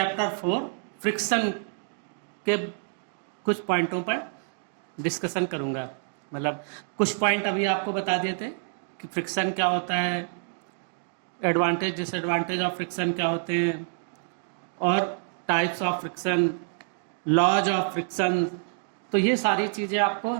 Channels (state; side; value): silent; left; digital silence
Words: 4 फ्रिक्शन के कुछ पॉइंटों पर डिस्कशन करूंगा। मतलब कुछ पॉइंट अभी आपको बता दिए थे कि फ्रिक्शन क्या होता है, एडवांटेज डिसएडवांटेज ऑफ फ्रिक्शन क्या होते हैं, और types of friction, laws of friction. तो ये सारी चीज़ें आपको